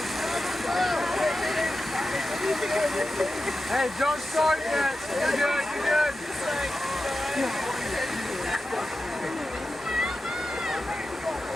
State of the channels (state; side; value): normal; both; correlation 0.92